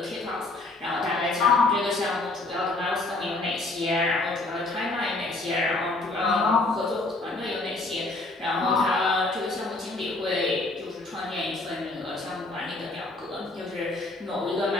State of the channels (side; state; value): right; quieter; 3.1 dB